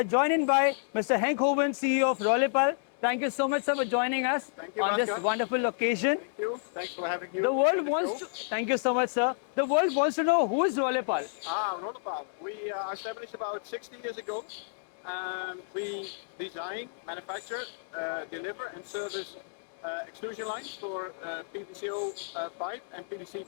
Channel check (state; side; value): silent; right; digital silence